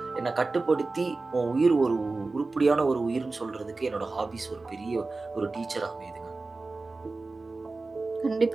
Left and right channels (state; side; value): quieter; left; 3.6 dB